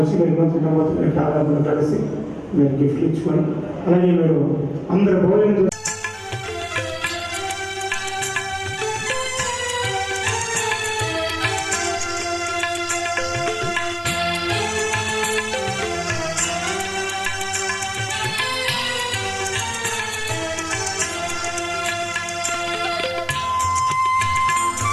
మీరు నూతన కాలంలో కలిసి మీరు గిఫ్ట్ ఇచ్చుకొని, అలాగే మీరు అందరు భోజనం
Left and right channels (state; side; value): identical; both; correlation 1.00